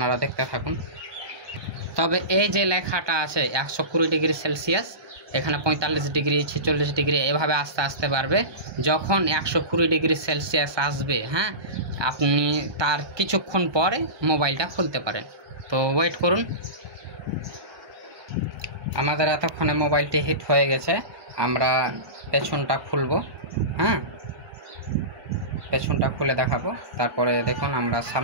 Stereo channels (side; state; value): left; late; 1.2 ms